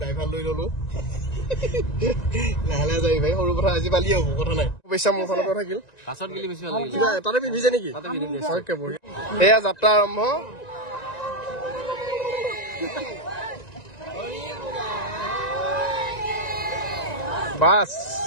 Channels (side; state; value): right; late; 1.9 ms